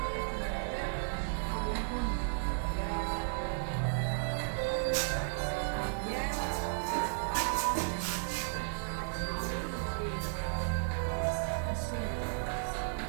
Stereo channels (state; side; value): silent; left; digital silence